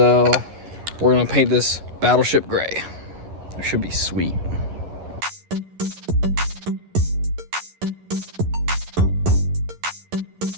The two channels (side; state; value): left; late; 11 ms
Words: we're gonna paint this Battleship Gray. It should be sweet.